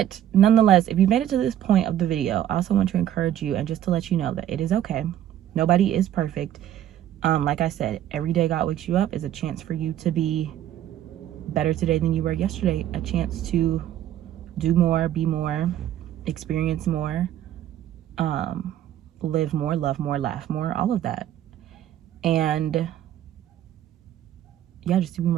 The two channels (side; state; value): left; quieter; 11.5 dB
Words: nonetheless, if you made it to this point of the video, I also want to encourage you and just to let you know that it is okay. Nobody is perfect. Like I said, every day God wakes you up is a chance for you to be better today than you were yesterday. A chance to do more, be more, experience more, live more, love more, laugh more, all of that. And yeah, just to be